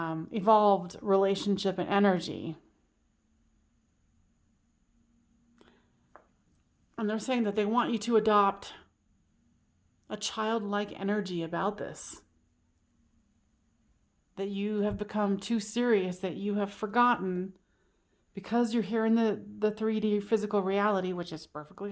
relationship and energy. And they're saying that they want you to adopt a childlike energy about this. That you have become too serious, that you have forgotten, because you're here in the 3D physical reality, which is perfectly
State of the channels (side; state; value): both; identical; correlation 1.00